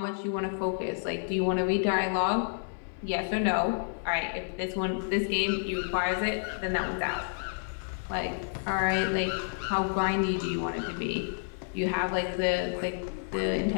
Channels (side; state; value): right; silent; 58 dB below the other